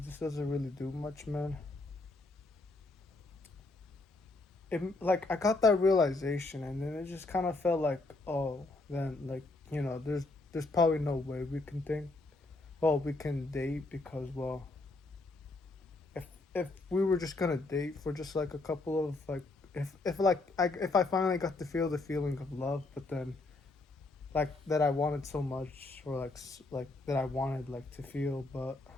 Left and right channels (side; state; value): right; quieter; 3.2 dB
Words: just doesn't really do much, man. Like I got that realization, and then it just kind of felt like, oh, then like there's probably no way we can date, because well, if we were just gonna date for just like a couple of like, if I finally got to feel the feeling of love, but then like that I wanted so much, or like that I wanted like to feel, but